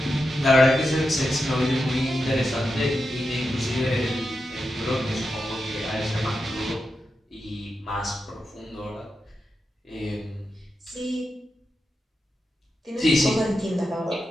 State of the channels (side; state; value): both; normal; correlation 0.89